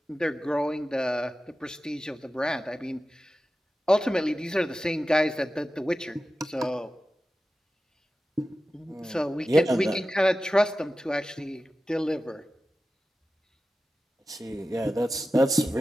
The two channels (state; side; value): normal; both; correlation 0.94